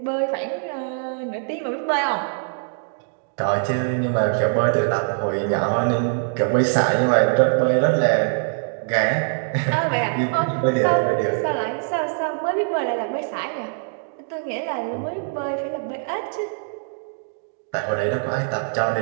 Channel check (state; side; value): silent; left; digital silence